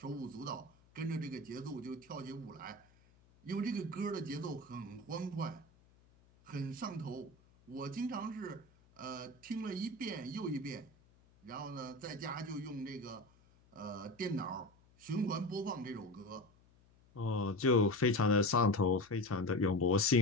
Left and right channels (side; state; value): left; noise; hum, 29 dB below the sound